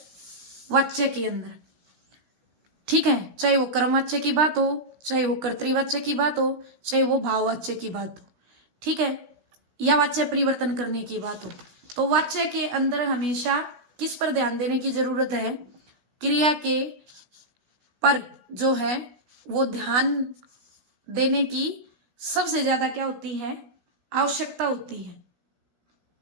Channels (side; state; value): left; late; 16 ms